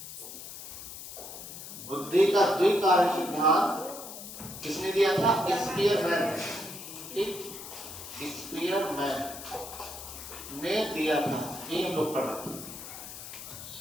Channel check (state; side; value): noise; left; hiss, 11 dB below the sound